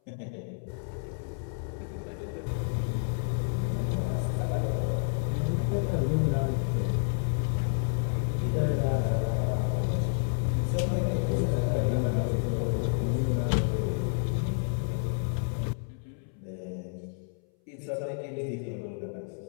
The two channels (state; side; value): silent; right; 58 dB below the other